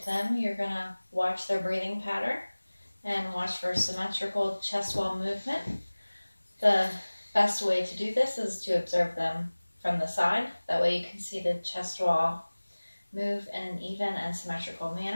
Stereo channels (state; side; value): inverted; both; correlation -1.00